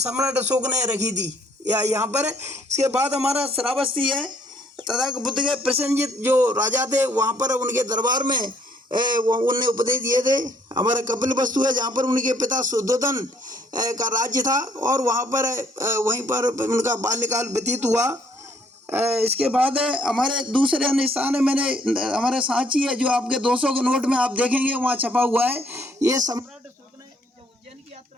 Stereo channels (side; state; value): both; normal; correlation 0.66